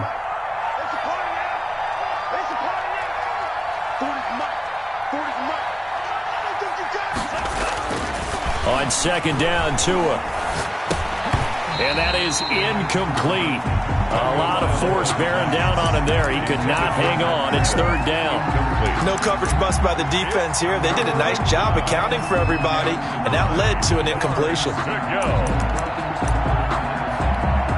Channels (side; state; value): both; identical; correlation 1.00